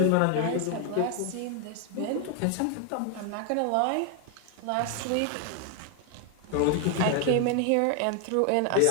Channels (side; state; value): both; different; correlation 0.00